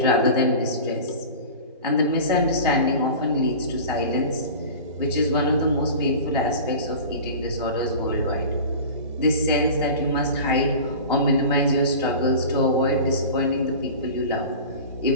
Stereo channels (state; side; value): inverted; both; correlation -0.35